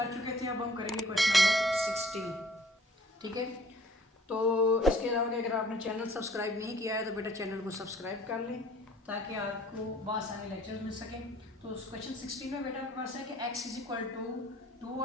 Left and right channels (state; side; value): normal; both; correlation 0.55